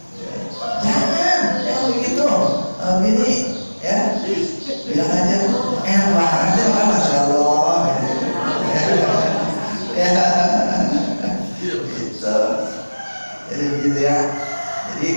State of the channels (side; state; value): both; inverted; correlation -1.00